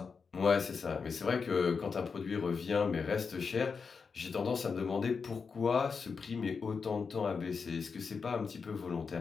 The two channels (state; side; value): quieter; right; 5.4 dB